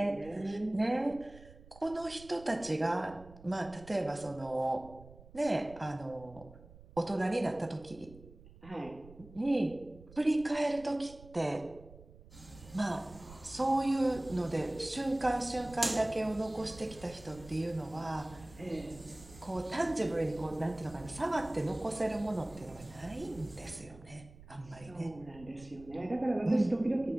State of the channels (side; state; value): right; noise; rumble, 19 dB below the sound